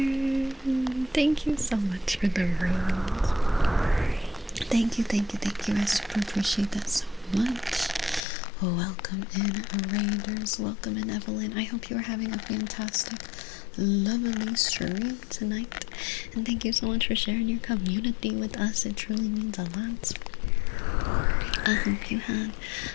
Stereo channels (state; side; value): drops out; right; at 8.2 s